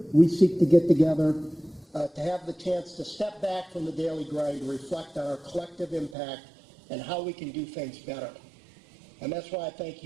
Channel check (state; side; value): drops out; left; at 6.2 s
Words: we seek to get together to have the chance to step back from the daily grind to reflect on our collective impact and how we can do things better. And that's why I thank